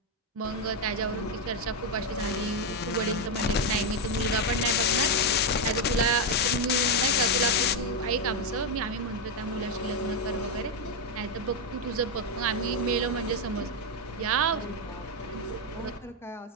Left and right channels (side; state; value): both; normal; correlation 0.05